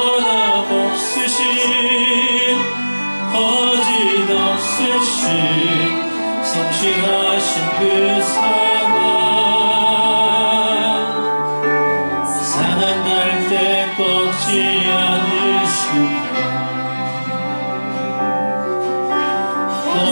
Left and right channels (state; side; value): inverted; both; correlation -1.00